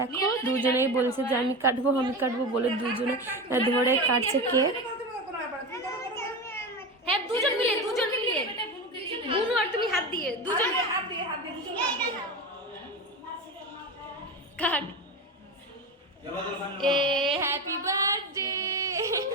দুজনেই বলছে যে আমি কাটবো বলে দুজনে ধরে কাটছে কেক। হ্যাঁ দুজন মিলে বুনু আর তুমি হাত দিয়ে দুজন কাট। এ হ্যাপি বার্থডে।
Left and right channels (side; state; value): both; normal; correlation 0.23